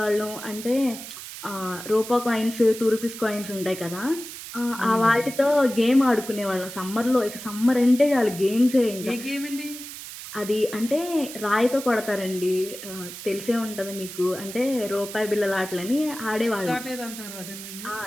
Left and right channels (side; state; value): right; noise; hiss, 11 dB below the sound